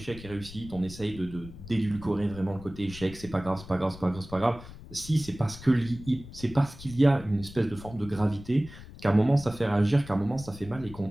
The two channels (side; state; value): left; noise; rumble, 16 dB below the sound